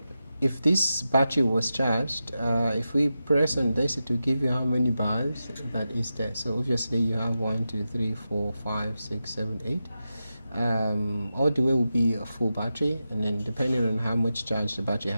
if this battery was charged, if we press on this, it will give you how many bars that is there. So obviously you have 1, 2, 3, 4, 5, 6, 7, 8. All the way will be a full battery, and then depending on how much charge the battery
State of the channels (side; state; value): both; inverted; correlation -0.91